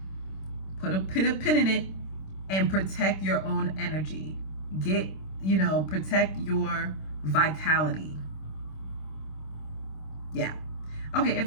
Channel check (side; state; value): right; late; 26 ms